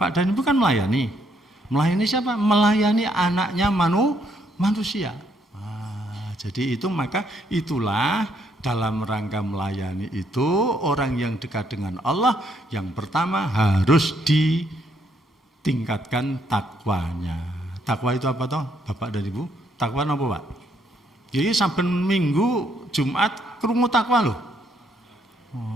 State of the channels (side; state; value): both; normal; correlation 0.72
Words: dan Ibu kan melayani. Melayani siapa? Melayani anaknya manusia. Nah, jadi itu maka itulah dalam rangka melayani itu orang yang dekat dengan Allah yang pertama harus ditingkatkan takwanya. Takwa itu apa toh, Bapak dan Ibu? Takwa apa Pak? Jadi saben minggu Jumat krungu takwa loh.